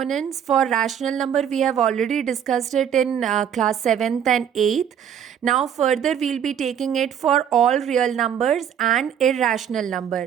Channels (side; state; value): left; quieter; 8.9 dB